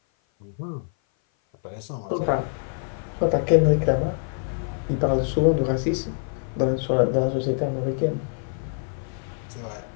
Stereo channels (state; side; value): silent; right; 57 dB below the other